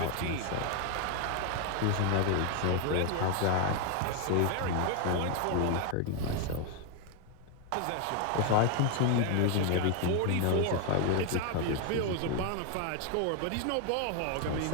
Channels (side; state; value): both; different; correlation 0.01